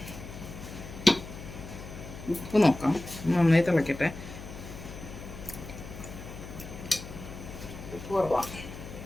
ഉപ്പ് നോക്കാം. നന്നായി തിളക്കട്ടെ. ഉപ്പ് കുറവാണ്.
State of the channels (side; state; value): left; noise; hum, 12 dB below the sound